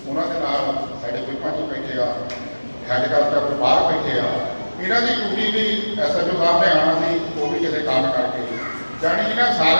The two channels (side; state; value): both; inverted; correlation -1.00